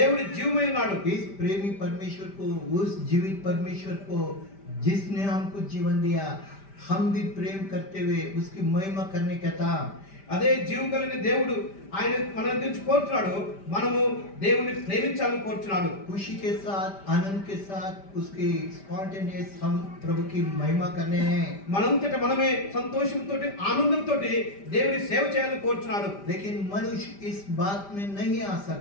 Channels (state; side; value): late; right; 5.1 ms